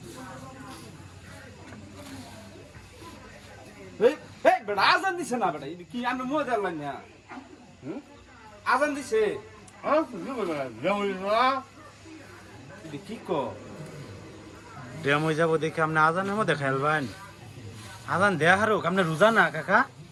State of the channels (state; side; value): identical; both; correlation 1.00